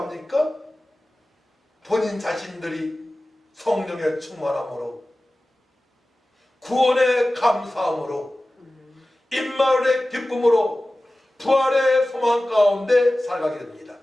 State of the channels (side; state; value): both; normal; correlation 0.96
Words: 본인 자신들이 성령의 충만함으로, 구원의 감사함으로, 임마을의 기쁨으로, 부활의 소망 가운데 살아가게 됩니다.